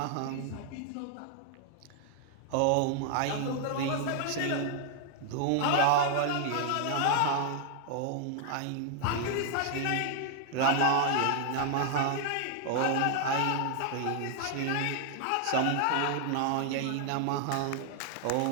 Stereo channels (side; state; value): both; different; correlation 0.00